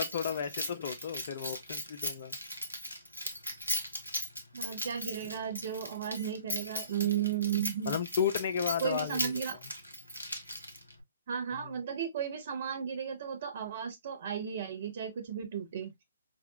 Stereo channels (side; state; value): both; inverted; correlation -0.51